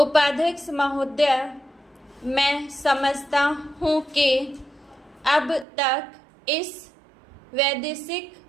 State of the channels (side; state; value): left; drops out; at 5.7 s